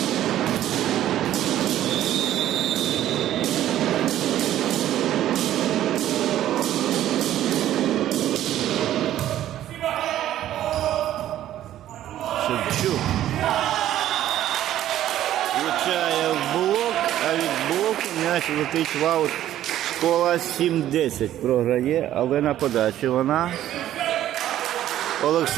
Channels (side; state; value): left; quieter; 12.5 dB